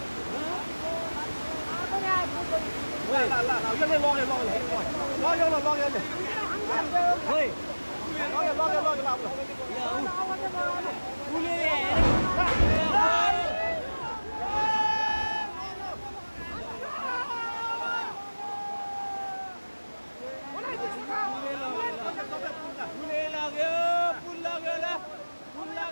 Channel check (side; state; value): both; inverted; correlation -1.00